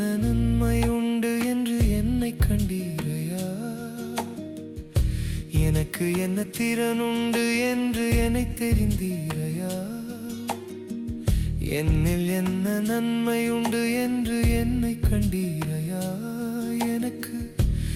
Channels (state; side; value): identical; both; correlation 1.00